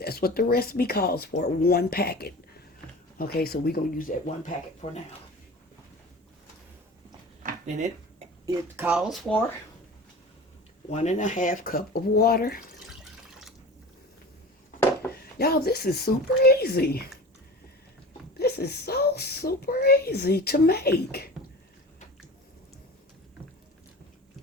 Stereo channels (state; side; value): normal; both; correlation 0.36